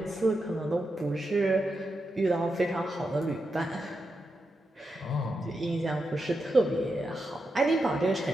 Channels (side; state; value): both; normal; correlation 0.87